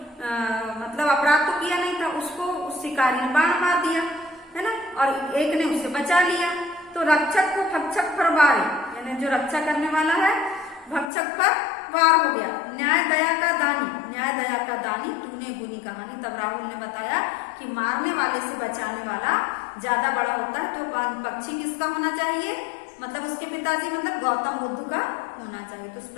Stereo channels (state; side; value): drops out; right; at 11.1 s